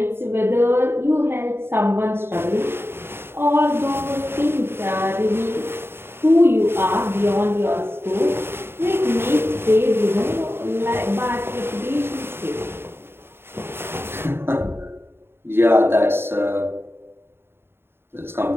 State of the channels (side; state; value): left; late; 0.11 ms